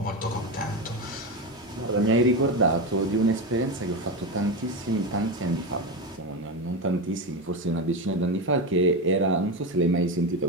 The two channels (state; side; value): normal; both; correlation 0.16